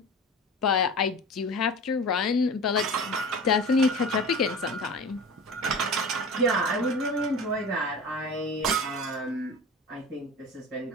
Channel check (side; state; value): both; normal; correlation 0.34